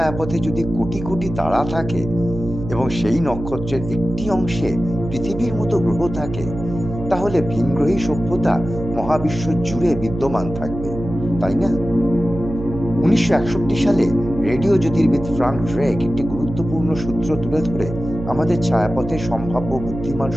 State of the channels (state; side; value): noise; right; hum, 8 dB below the sound